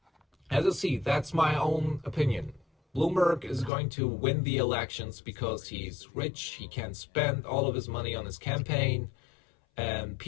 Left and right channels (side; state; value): right; drops out; at 3.7 s